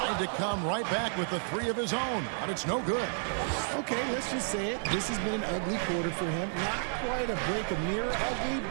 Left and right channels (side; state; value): left; silent; digital silence